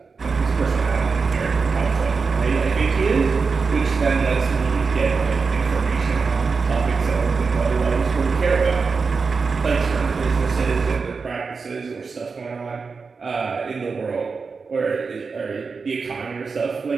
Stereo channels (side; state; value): left; quieter; 4.8 dB